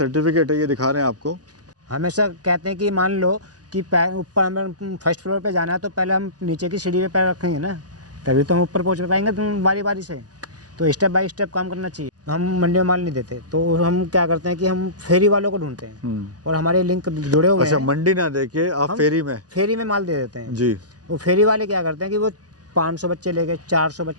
है, ये दिखा रहे हैं आपको। हमेशा कहते हैं कि मान लो कि ऊपर हमें फर्स्ट फ्लोर पे जाना है तो पहले हम नीचे की सीढ़ी पे पैर रखेंगे ना, तभी तो हम ऊपर पहुंच पाएंगे बारी बारी से। तो स्टेप बाय स्टेप काम करना चाहिए। हम मंडी में माल नहीं देते तो हम क्या करते हैं कि हम फेरी वालों को ढूंढते हैं और हमारे लिंक जुड़े हुए अच्छा, हैं। मंडी ना देके आप फेरी में माल दे देते हैं जी। वो फेरी वाले क्या करते हैं कि वो 500 बच्चे ले गए, 400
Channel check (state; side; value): late; left; 0.68 ms